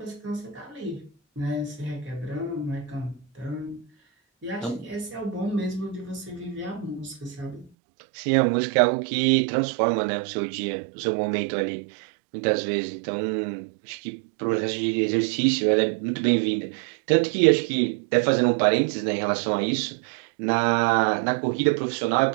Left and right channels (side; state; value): left; drops out; at 7.7 s